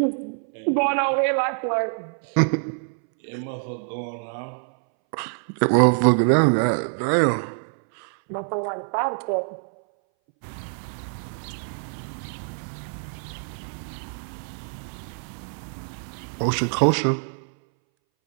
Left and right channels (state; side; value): silent; left; 61 dB below the other